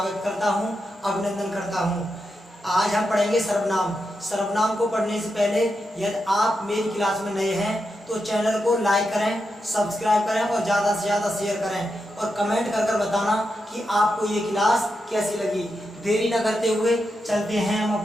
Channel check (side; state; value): both; normal; correlation 0.86